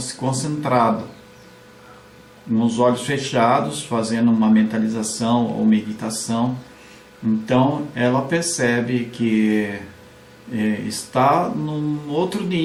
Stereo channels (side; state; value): both; identical; correlation 1.00